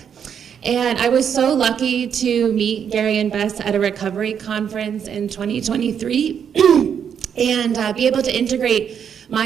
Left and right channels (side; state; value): left; quieter; 7.9 dB